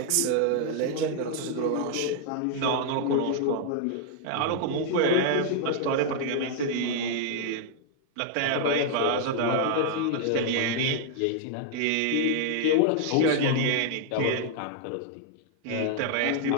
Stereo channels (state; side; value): different; both; correlation 0.00